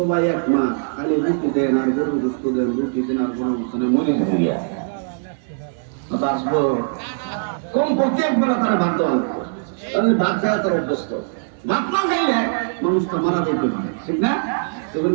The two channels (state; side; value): silent; left; digital silence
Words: এক মাস খালি রুটি দেন আর গরু গোস্ত দেন, রুটি দেন আর গরু গোস্ত দেন, মরে যাবে। আসবো কমপক্ষে একবার তারা ভাত দেওয়া লাগবে, তাহলে ভাত খাওয়া তার অভ্যস্ত। ভাত না খাইলে মানুষটা মারা যেতে পারে, ঠিক না?